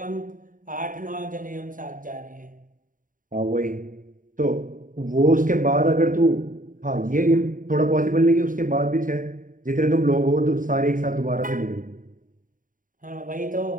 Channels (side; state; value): left; late; 0.39 ms